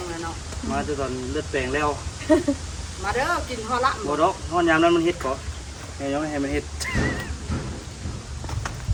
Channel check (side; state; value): both; identical; correlation 1.00